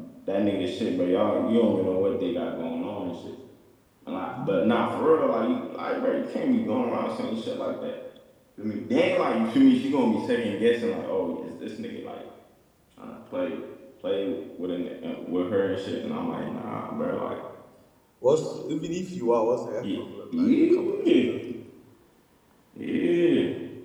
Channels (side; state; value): both; identical; correlation 1.00